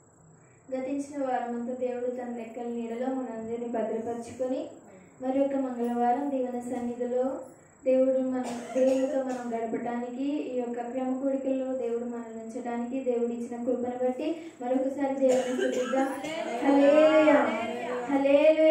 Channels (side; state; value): both; identical; correlation 1.00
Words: గతించిన వారమంతా దేవుడు తన రెక్కల నీడలో మనందరినీ భద్రపరుచుకొని మరి ఒక మంగళవారం దేవుని సన్నిధిలో దేవుడితో మనం గడపడానికి ఈ యొక్క క్రమ కూడికల్లో దేవుడు మనల్ని ఉంచడానికి దేవుడు ఇచ్చిన కృపను బట్టి మరొకసారి దేవుని స్తుతిద్దాం. హల్లెలూయా,